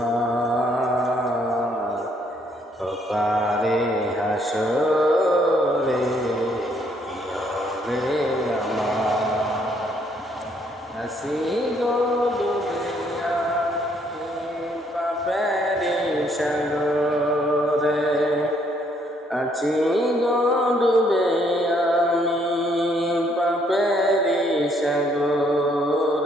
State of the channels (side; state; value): both; normal; correlation 0.68